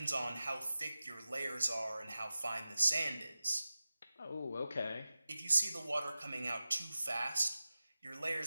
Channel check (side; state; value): both; inverted; correlation -0.95